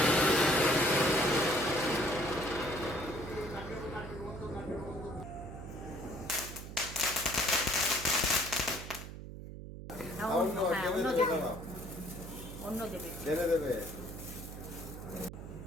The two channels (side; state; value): right; noise; hum, 11 dB below the sound